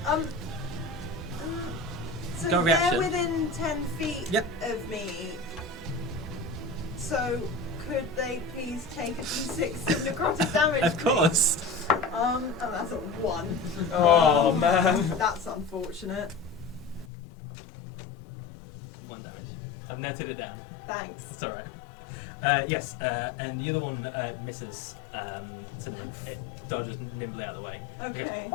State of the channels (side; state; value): right; drops out; at 17.1 s